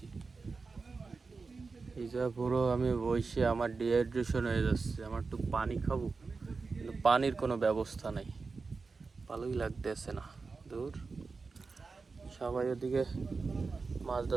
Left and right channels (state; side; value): quieter; left; 4.4 dB